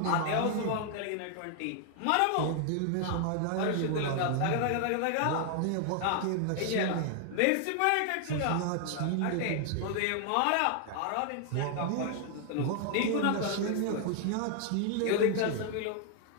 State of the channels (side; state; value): both; different; correlation 0.00